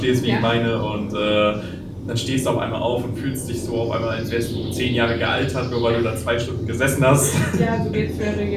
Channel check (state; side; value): identical; both; correlation 1.00